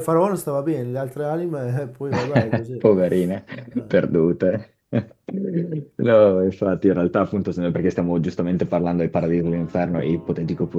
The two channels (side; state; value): both; identical; correlation 1.00